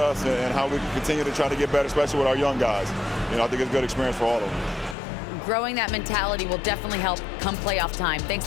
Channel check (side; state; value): right; drops out; at 5.0 s